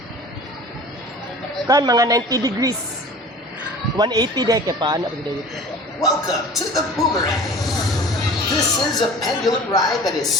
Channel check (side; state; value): both; normal; correlation 0.42